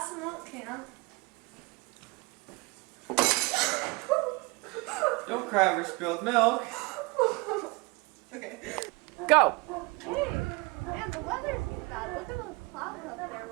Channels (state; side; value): quieter; left; 27.2 dB